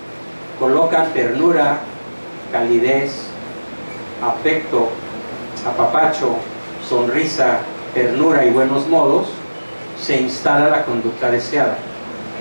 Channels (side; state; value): both; inverted; correlation -1.00